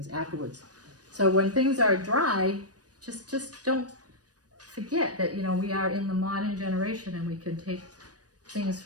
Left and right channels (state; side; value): late; left; 0.68 ms